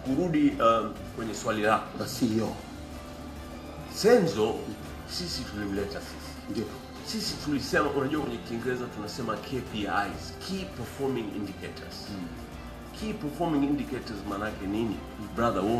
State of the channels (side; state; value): both; identical; correlation 1.00